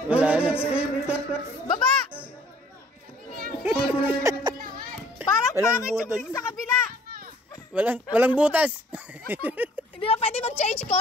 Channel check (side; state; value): both; normal; correlation 0.56